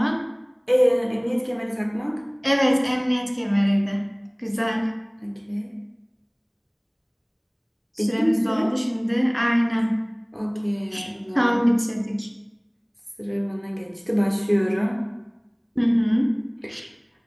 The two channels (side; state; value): both; identical; correlation 1.00